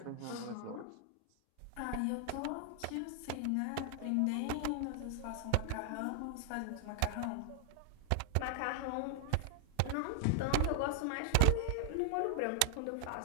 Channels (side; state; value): both; different; correlation 0.00